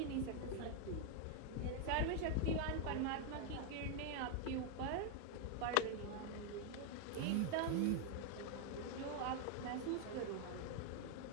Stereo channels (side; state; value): both; different; correlation 0.00